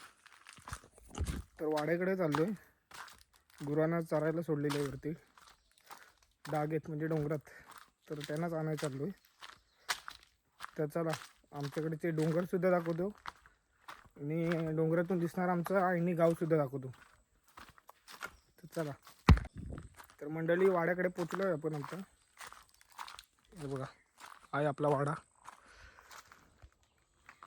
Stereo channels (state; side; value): identical; both; correlation 1.00